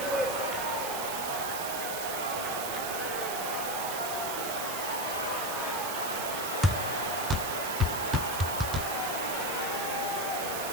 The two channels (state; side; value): noise; right; hiss, 5 dB below the sound